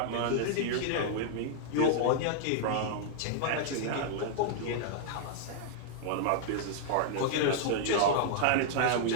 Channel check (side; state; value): both; different; correlation -0.01